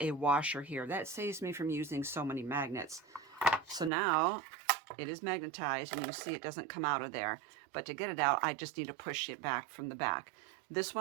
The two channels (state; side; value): drops out; left; at 3.9 s